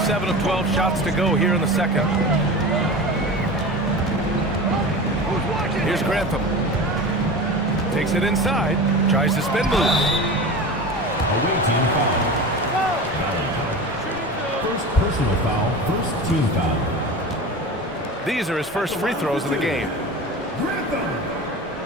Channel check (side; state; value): both; normal; correlation 0.31